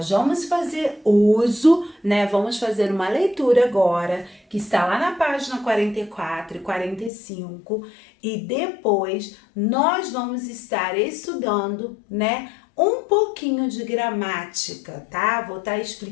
vamos fazer uso, né? Vamos fazer uma leitura agora, que está lá na página 44 e 45, e depois nós vamos estar estudando, né, um pouquinho de gramática, tá? Vou estar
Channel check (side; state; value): right; drops out; at 7.1 s